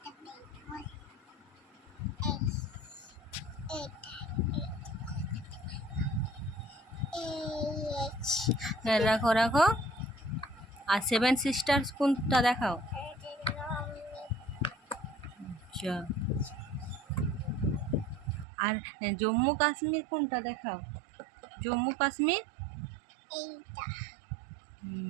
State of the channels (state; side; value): drops out; left; at 18.4 s